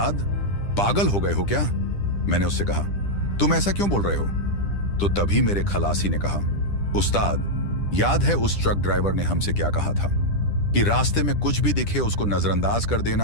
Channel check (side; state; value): right; late; 10 ms